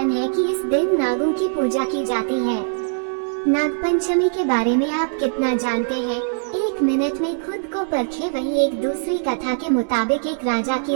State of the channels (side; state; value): left; silent; digital silence